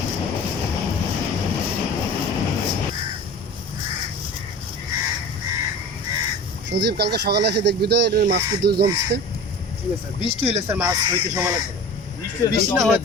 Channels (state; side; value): normal; both; correlation 0.37